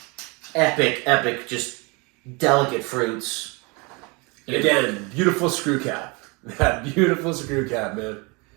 epic, just delicate fruits. And again, beautiful screw cap. That beautiful screw cap, man.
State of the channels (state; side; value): quieter; left; 29.0 dB